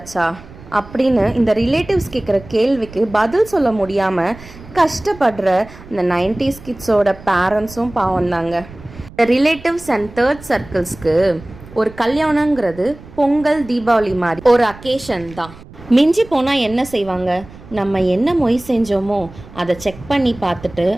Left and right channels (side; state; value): right; noise; rumble, 19 dB below the sound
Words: அப்படின்னு இந்த ரிலேட்டிவ்ஸ் கேட்குற கேள்விக்கு பதில் சொல்ல முடியாமல் கஷ்டப்படுற இந்த 90s கிட்ஸோட பேரண்ட்ஸும் பாவம் தாங்க. இந்த ரிலேட்டிவ்ஸ் அண்ட் தேர்ட் சர்க்கிள்ஸ்க்கு ஒரு கல்யாணங்கிறது பொங்கல், தீபாவளி மாதிரி ஒரு அக்கேஷன் தான். மிஞ்சி போனால் என்ன செய்வாங்க? நம்ம என்ன மொய் செஞ்சோமோ அதை செக் பண்ணி பார்த்துட்டு